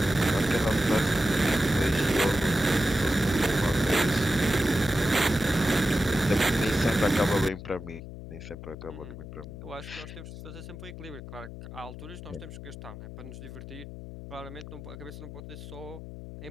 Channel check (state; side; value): noise; left; hum, 12 dB below the sound